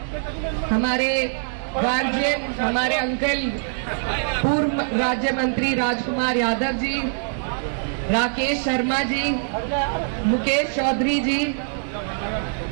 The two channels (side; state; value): left; silent; digital silence